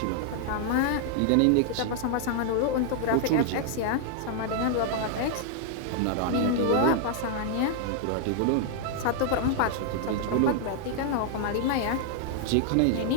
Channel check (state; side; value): different; both; correlation 0.00